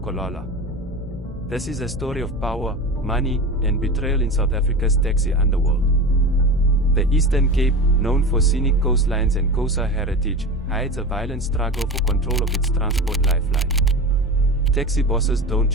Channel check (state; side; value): normal; both; correlation 0.29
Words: This is a story of power, money, and betrayal in South Africa's taxi underworld. The Eastern Cape, known for scenic coastlines and Xhosa heritage, hides a violent struggle for control of its transport lifeline. Taxi bosses don't